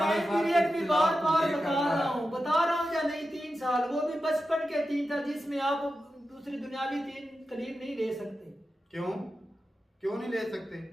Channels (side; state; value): both; normal; correlation 0.91